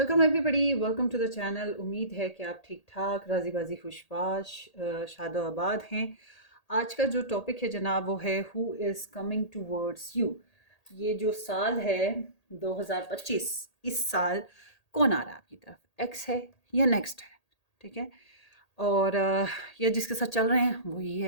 everybody, welcome to the channel. उम्मीद है कि आप ठीक ठाक राजी बाजी खुशबाश शादो आबाद हैं। आज का जो टॉपिक है जनाब वो है who is coming towards you. ये जो साल है 2025, इस साल कौन आ रहा है आपकी तरफ? एक्स है या नेक्स्ट है? ठीक है। और ये जिसके साथ चल रहे हैं वही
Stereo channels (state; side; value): late; right; 1.8 ms